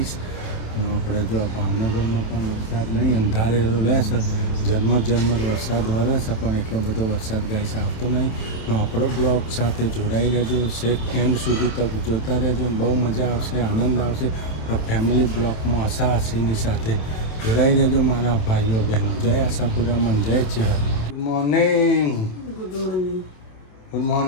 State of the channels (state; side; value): late; right; 27 ms